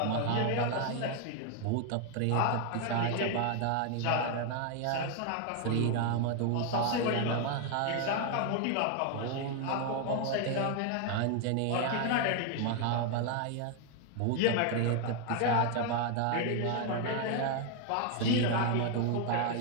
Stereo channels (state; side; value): different; both; correlation 0.00